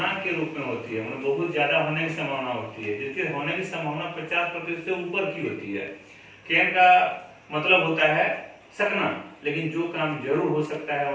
के रूप में होती है, मतलब बहुत ज्यादा होने की संभावना होती है, जिसके होने की संभावना 50% से ऊपर की होती है। कैन का मतलब होता है सकना, लेकिन जो काम जरूर हो सकता है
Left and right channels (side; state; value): both; identical; correlation 1.00